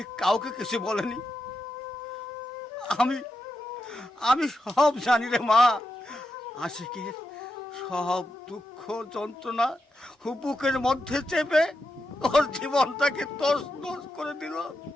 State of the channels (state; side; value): normal; both; correlation 0.87